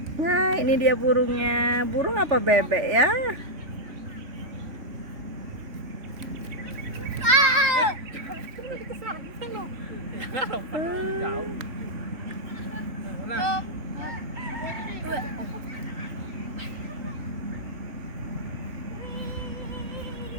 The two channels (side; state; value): left; late; 3.3 ms